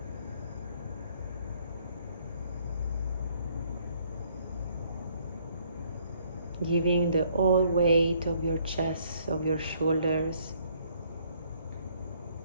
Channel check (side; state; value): both; inverted; correlation -0.65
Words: Giving the whole weight of your chest, of your shoulders.